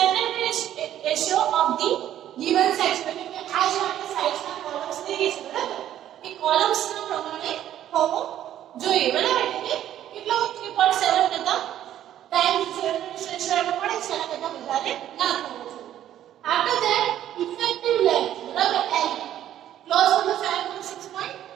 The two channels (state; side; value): quieter; left; 11.6 dB